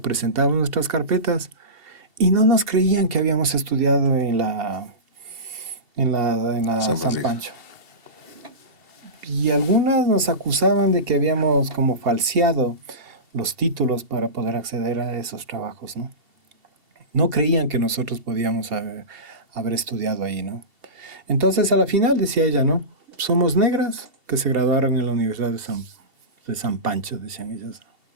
presentábamos nuestras carpetas y no nos creían que habíamos estudiado en la San Pancho. Y algunas nos acusaban de que habíamos como falseado los títulos para poder acceder a esos trabajos, ¿no? No creían que nosotros podíamos haber estudiado ahí, ¿no? Entonces, a la final, decía ella, ¿no? Somos negras que se graduaron en la Universidad de San Pancho, decían ellas.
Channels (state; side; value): late; left; 2.7 ms